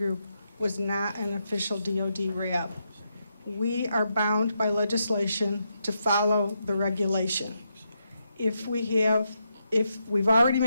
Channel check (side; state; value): both; inverted; correlation -0.82